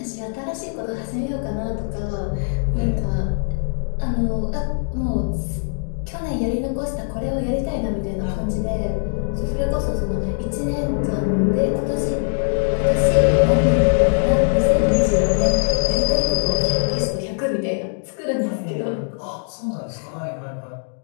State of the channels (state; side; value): silent; right; digital silence